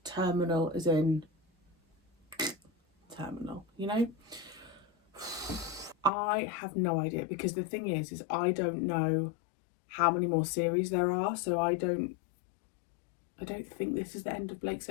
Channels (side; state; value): right; drops out; at 6.1 s